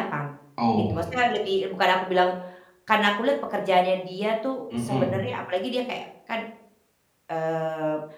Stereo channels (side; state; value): both; identical; correlation 1.00